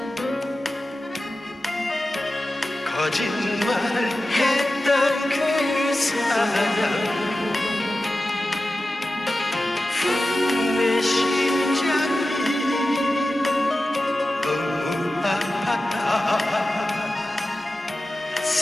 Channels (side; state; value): both; normal; correlation 0.94